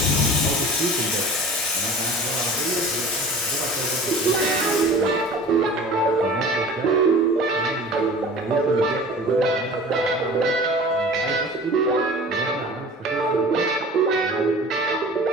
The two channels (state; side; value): normal; both; correlation 0.41